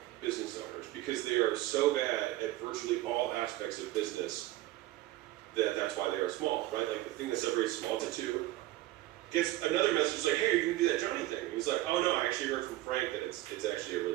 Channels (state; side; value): quieter; left; 16.3 dB